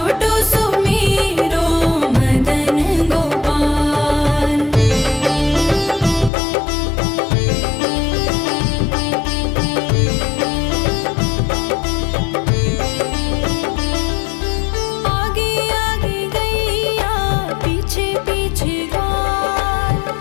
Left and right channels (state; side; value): drops out; right; at 6.3 s